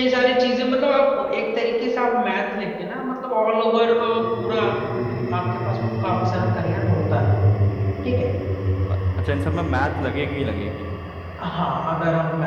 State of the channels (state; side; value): identical; both; correlation 1.00